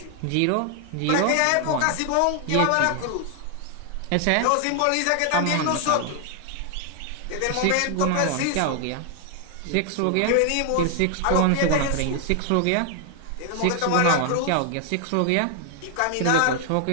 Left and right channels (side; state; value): both; different; correlation 0.00